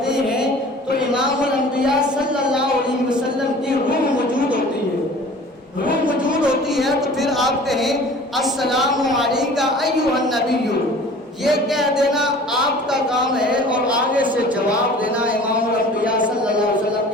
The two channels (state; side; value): normal; both; correlation 0.45